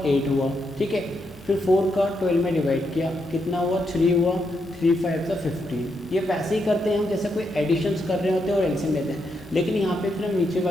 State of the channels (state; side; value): normal; both; correlation 0.81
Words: 8 हुआ, ठीक है। फिर 4 का 12 में डिवाइड किया, कितना हुआ, 3 हुआ, 3 5 का 15। ये वैसे ही करते हैं हम जैसे कोई एडिशंस कर रहे होते हैं और एलसीएम लेते हैं, लेकिन यहाँ पे फिर हम नीचे